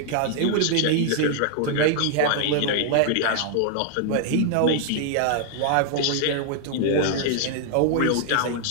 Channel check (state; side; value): different; both; correlation 0.00